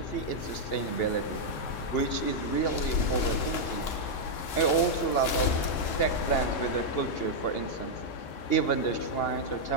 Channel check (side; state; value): right; late; 2.8 ms